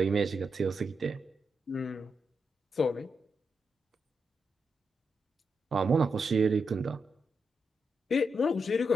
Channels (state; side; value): normal; both; correlation 0.85